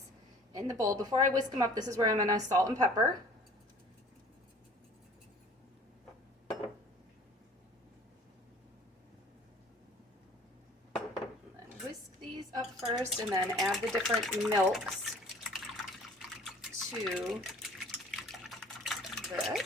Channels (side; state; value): both; normal; correlation 0.50